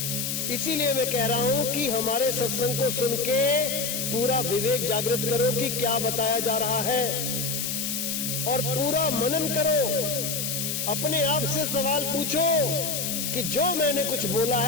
इसीलिए मैं कह रहा हूं कि हमारे सत्संग को सुन के पूरा विवेक जागृत करो कि क्या बताया जा रहा है, और पूरा मनन करो। अपने आप से सवाल पूछो कि जो मैंने कुछ बोला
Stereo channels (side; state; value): left; noise; hiss, 2 dB below the sound